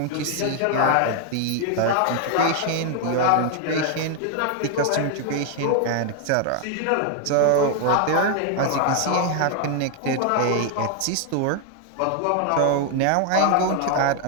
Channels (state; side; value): different; both; correlation 0.00